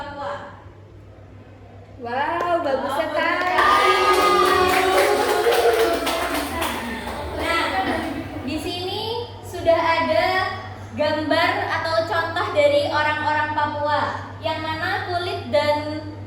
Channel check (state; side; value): identical; both; correlation 1.00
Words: Wow, bagus sekali. Nah, di sini sudah ada gambar atau contoh dari orang-orang Papua yang mana kulit dan